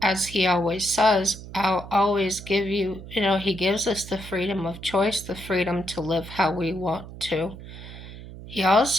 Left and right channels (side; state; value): right; noise; hum, 14 dB below the sound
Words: as He always says, I'll always give you, He gives us the freedom of choice, the freedom to live how we want to. He